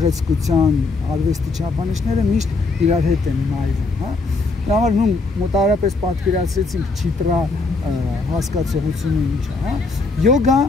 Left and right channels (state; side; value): quieter; right; 3.7 dB